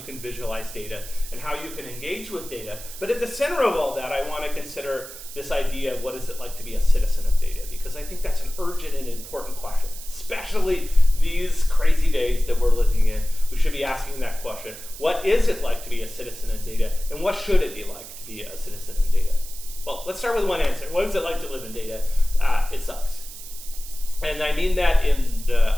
can visualize data and how you can engage with data. But at the center of all that, I want to consider this idea of what is it like to be a citizen of data, because I think that's an urgent and important question, especially these crazy days that we're living in. We should be asking that question. What is it like to be a citizen in data, and what should it be like to be a citizen in data? Well, let's start with one answer. What is it like to live in data? It sucks. And I mean that in the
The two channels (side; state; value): right; noise; hiss, 14 dB below the sound